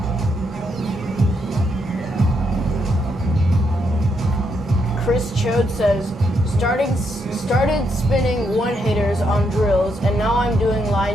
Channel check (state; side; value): normal; both; correlation 0.78